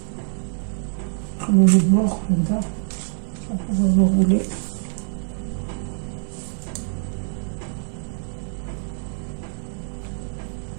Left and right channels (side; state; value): left; silent; digital silence